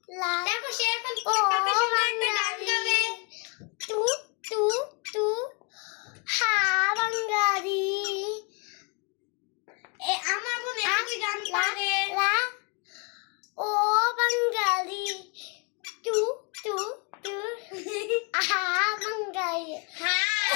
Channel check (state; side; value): quieter; right; 33.4 dB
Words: লা দেখো সে এখন কত সুন্দর একটা গান গাবে। তু তু তু হা বাঙালি আমার বোন একই গান পারে। লা ও বাঙালি তু তু তু হা বাঙালি